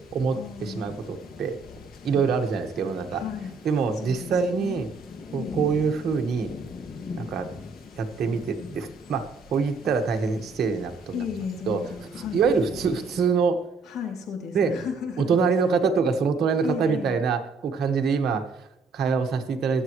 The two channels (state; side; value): quieter; left; 4.3 dB